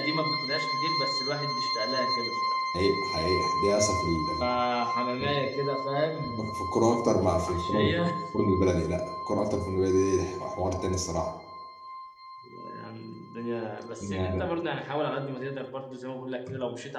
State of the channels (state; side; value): identical; both; correlation 1.00